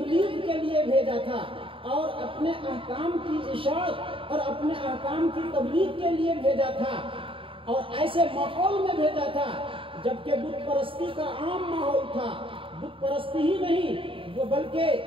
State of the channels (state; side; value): late; left; 0.25 ms